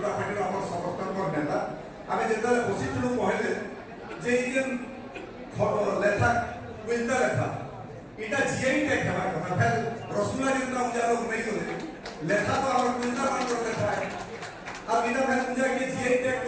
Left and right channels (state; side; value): identical; both; correlation 1.00